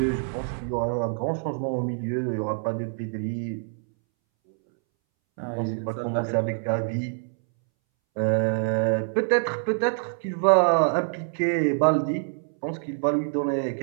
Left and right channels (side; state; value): left; silent; 61 dB below the other